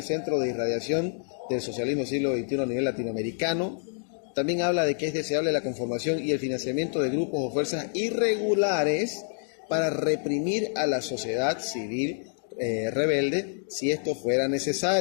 centro de irradiación del socialismo del siglo XXI a nivel latinoamericano. También habla de que es deseable la conformación y el financiamiento de grupos o fuerzas irregulares para reprimir a la sociedad civil rebelde si esto fuera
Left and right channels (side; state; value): right; silent; 60 dB below the other